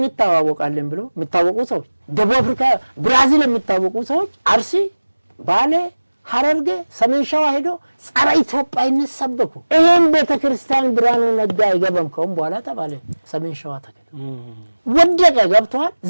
ብሎ የሚታወቁ ሰዎች ደቡብ አፍሪካ ብራዚል የሚታወቁ ሰዎች አርሲ ባሌ ሐረርጌ ሰሜን ሸዋ ሄዶ ጸረ ኢትዮጵያዊነት ሰበኩ ይሄን ቤተክርስቲያን ብርሃኑ ነጋ አይገባም ከሆነ በኋላ ተባለ ሰሜን ሸዋ ተከለ ወደቀ ገብቷል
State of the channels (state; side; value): inverted; both; correlation -1.00